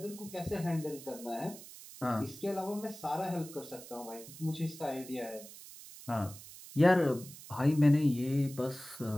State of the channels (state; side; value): noise; right; hiss, 16 dB below the sound